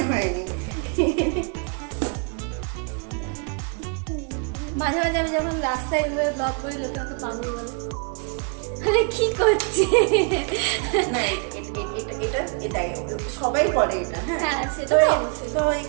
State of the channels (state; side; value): quieter; left; 38.5 dB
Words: হয়নি। মাঝে আমি যখন রাস্তায় এভাবে ব্লগ করি লোকে আমাকে পাগল বলে, আরে কি করছে। না এটা সবাই বলে এটা। হ্যাঁ সেটা তো তো অবশ্যই। তো